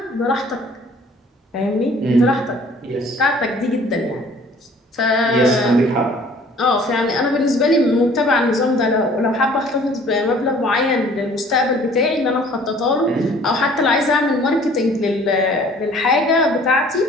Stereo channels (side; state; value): both; normal; correlation 0.53